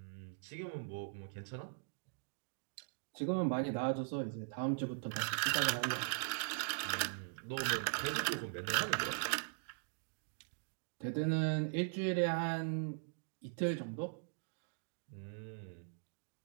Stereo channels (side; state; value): left; silent; digital silence